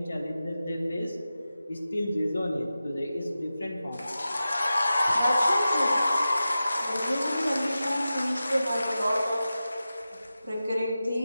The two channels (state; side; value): inverted; both; correlation -0.93